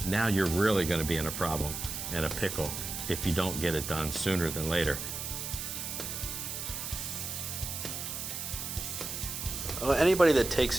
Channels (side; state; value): right; noise; hiss, 5 dB below the sound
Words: now you're really going to be in a problem and a pickle if you don't get it done sooner than later. Anybody that takes